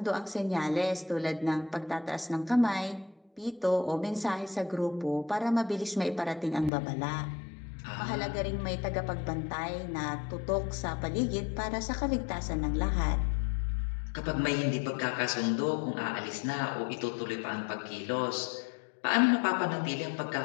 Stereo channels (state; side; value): drops out; right; at 6.7 s